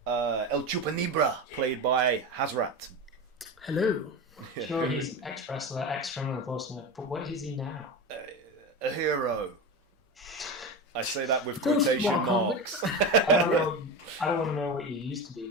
El Chupanibra, played by Hazrat. Hello. Sure, he's an ex-wrestler, ex-criminal enforcement, but what is he now? A hero. I say that with Those quotation small marks. comics. I don't want to know what you used to be,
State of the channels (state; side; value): normal; both; correlation 0.23